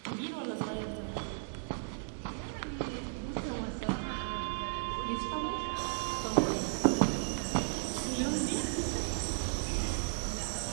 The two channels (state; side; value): silent; left; digital silence